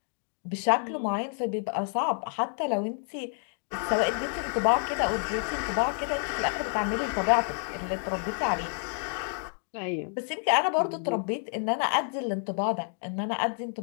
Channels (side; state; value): right; silent; 56 dB below the other